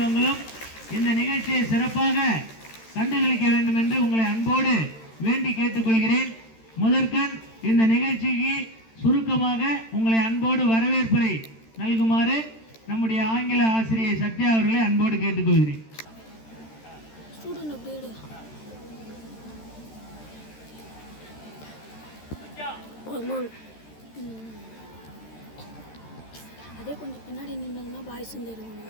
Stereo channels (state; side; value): late; right; 13 ms